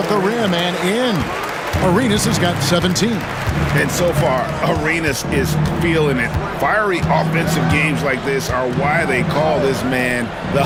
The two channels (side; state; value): both; identical; correlation 1.00